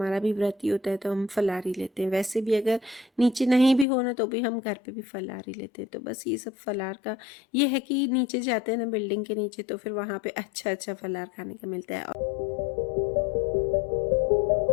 भी व्रत ही होता है, तो हम फलारी लेते हैं। वैसे भी अगर नीचे नहीं भी होना तो भी हम घर पे भी फलारी लेते हैं। तो बस ये सब फलार का ये है कि नीचे जाते हैं ना बिल्डिंग के नीचे, तो फिर वहाँ पे अच्छा अच्छा फलार खाने का मिलता है।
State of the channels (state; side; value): drops out; right; at 3.9 s